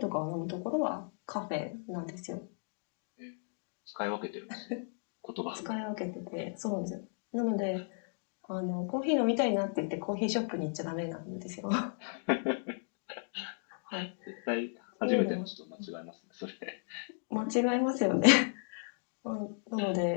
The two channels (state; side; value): silent; right; 54 dB below the other